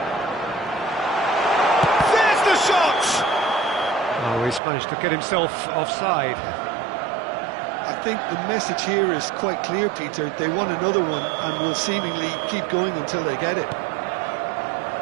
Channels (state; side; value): drops out; left; at 4.6 s